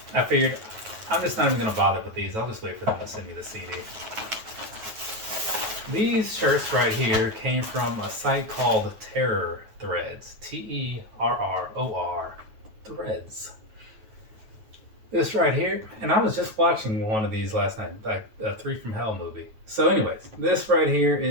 I figured I'm just not even going to bother with these. I'll just wait for them to send me the CD. These shirts right here came from a site called Terror Threads. Terror Threads. This right here, and I was just watching one of these last night, like a 3 from Hell movie. So anyways, this right here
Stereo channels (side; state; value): left; late; 9.2 ms